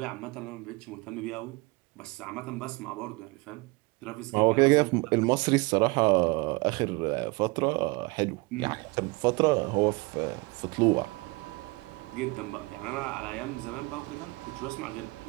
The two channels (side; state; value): left; quieter; 25.6 dB